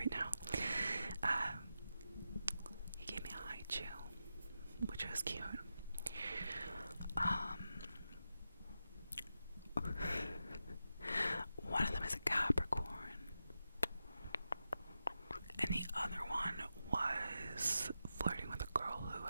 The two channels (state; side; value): inverted; both; correlation -0.89